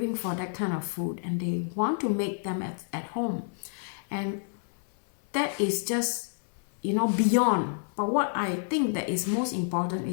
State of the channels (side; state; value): right; silent; 59 dB below the other